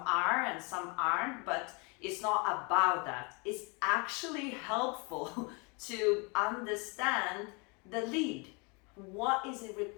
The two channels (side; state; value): right; quieter; 31.3 dB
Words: and some aren't, but it's not about that. It's actually helpful to understand the lead. What is it